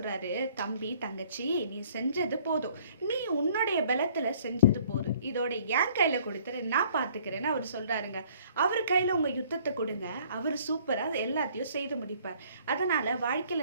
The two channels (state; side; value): inverted; both; correlation -0.58